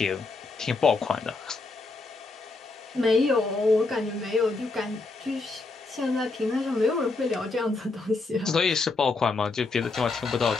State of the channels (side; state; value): right; quieter; 3.7 dB